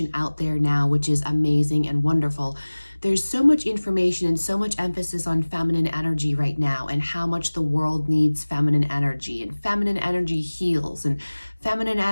out there now, which is amazing and wonderful. There's so much information and so much emphasis on feminine energy right now, and how much the world needs feminine energy, and feminine energy heals, and feminine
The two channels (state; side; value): inverted; both; correlation -1.00